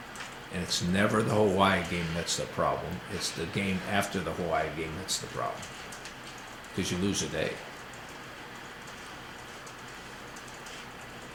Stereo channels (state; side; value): identical; both; correlation 1.00